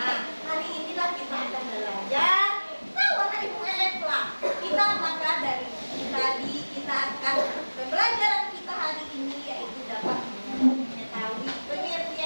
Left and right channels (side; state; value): both; inverted; correlation -1.00